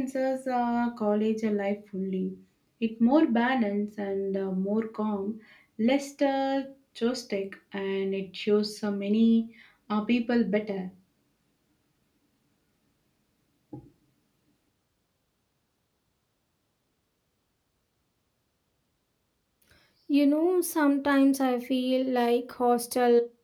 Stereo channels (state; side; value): identical; both; correlation 1.00